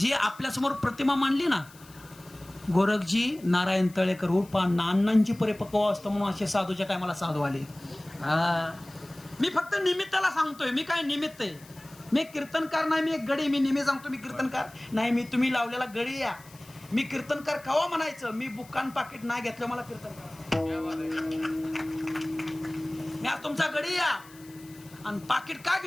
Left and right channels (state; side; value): noise; left; hiss, 23 dB below the sound